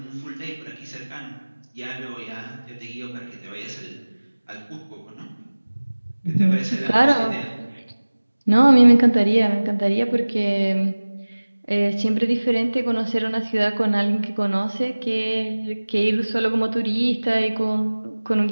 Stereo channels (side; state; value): both; inverted; correlation -1.00